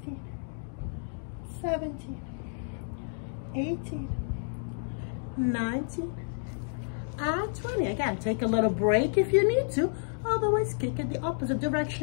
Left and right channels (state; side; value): silent; right; digital silence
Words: 17, 18, 19, and 20. Again, take a little break if you need to. Otherwise, kick in the opposite